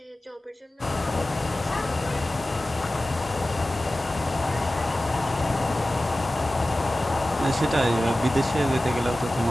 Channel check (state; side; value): normal; both; correlation 0.96